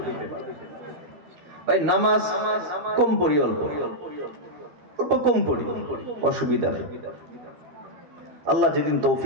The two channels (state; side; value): late; left; 13 ms